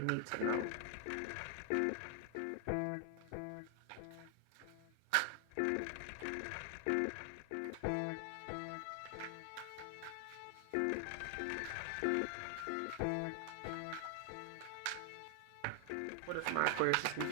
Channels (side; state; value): both; different; correlation 0.00